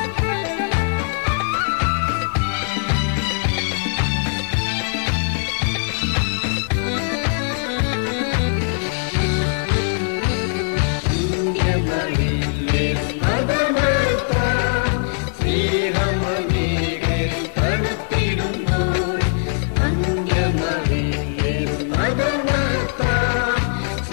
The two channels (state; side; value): silent; right; 62 dB below the other